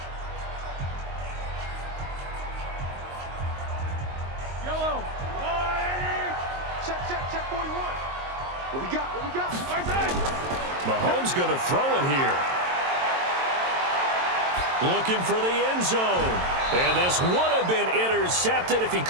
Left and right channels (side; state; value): left; late; 22 ms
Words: Mahomes going to throw it here. Looking for the end zone. And this would have been intercepted if he